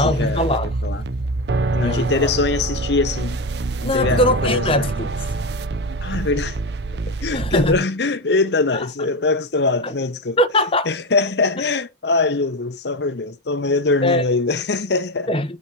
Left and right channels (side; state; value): both; normal; correlation 0.15